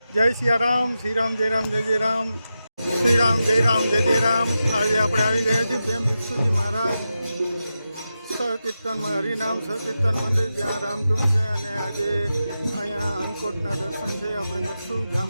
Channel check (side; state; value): both; inverted; correlation -0.90